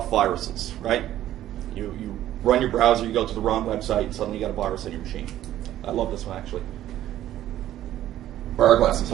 viruses, right? You run your browser, you go to the wrong website, and suddenly you got a virus on your machine. I love this one, actually. Bar glasses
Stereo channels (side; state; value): left; quieter; 13.0 dB